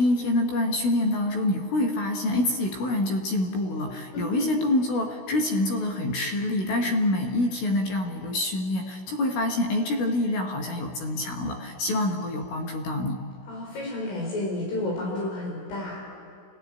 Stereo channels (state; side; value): late; right; 16 ms